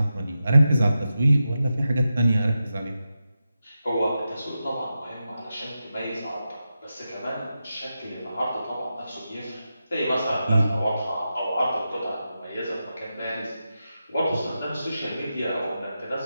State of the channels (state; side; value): inverted; both; correlation -0.90